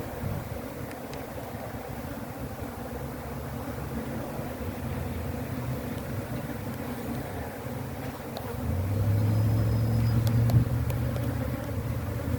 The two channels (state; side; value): identical; both; correlation 1.00